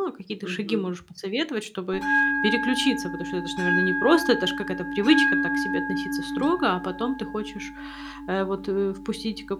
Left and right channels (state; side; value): identical; both; correlation 1.00